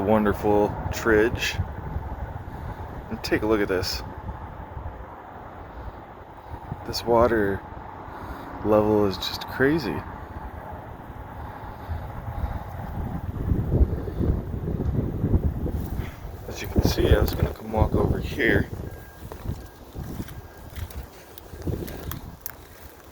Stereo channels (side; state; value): both; identical; correlation 1.00